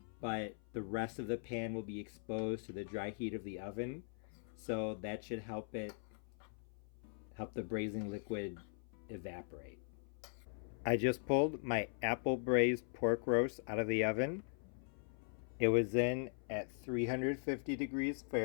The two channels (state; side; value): silent; right; 51 dB below the other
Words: but the rest of the pan will be exposed to the dry heat of the oven. So that should help the braising liquid evaporate. I just pulled my apple braised pork roast out of the oven. It was in at 350 degrees